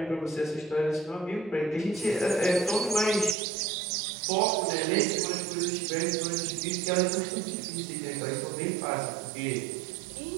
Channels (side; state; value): left; drops out; at 3.4 s